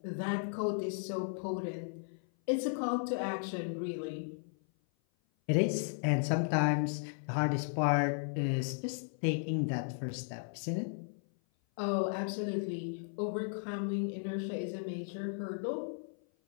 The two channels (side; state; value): right; silent; 54 dB below the other